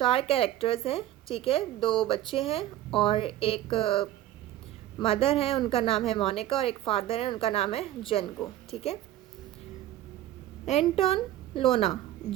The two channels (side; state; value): left; quieter; 13.6 dB